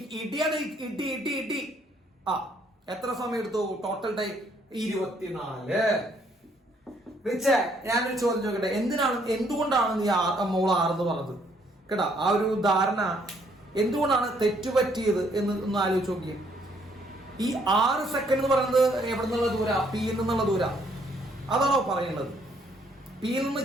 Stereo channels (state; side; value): normal; both; correlation 0.67